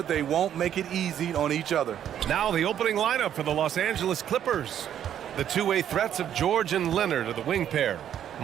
they won't make it easy on each other. Now the opening lineup for the Los Angeles Clippers. The two-way threats of George and Leonard are the wing pair.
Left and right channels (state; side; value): quieter; left; 10.1 dB